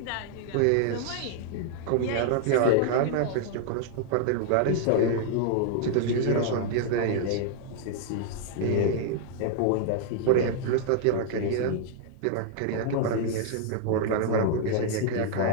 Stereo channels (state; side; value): different; both; correlation -0.01